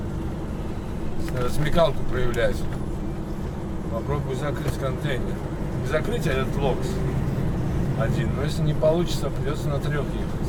Надо смекалку проявлять. Попробую закрыть контейнер. Не закрыть, а этот локс. один. Но если не получится, придется на 3 ехать.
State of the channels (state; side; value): identical; both; correlation 1.00